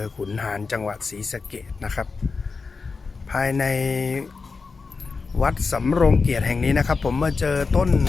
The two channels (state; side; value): quieter; right; 4.5 dB